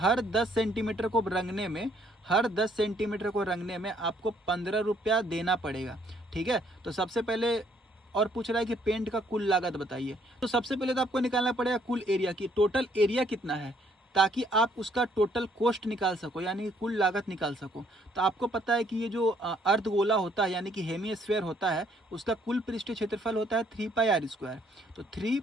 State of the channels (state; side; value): normal; both; correlation 0.66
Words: 10 सेंटीमीटर को रंगने में, हर 10 सेंटीमीटर को रंगने में आपको 15 रुपया देना पड़ेगा। ठीक है। तो सबसे पहले और पूछ रहा है कि पेंट का कुल लागत बताइए। तो सबसे पहले तो आपको निकालना पड़ेगा कुल एरिया की, टोटल एरिया कितना है, ताकि आप उसका टोटल कॉस्ट निकाल सको, यानी कि कुल लागत निकाल सको। तो आपको पता है कि ये जो अर्धगोला होता है, यानी कि हेमिस्फीयर होता है, उसका कुल पृष्ठीय क्षेत्रफल होता है 3 पाई आर स्क्वायर। तो 3